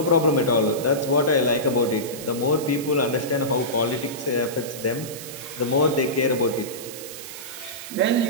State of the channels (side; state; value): right; noise; hiss, 12 dB below the sound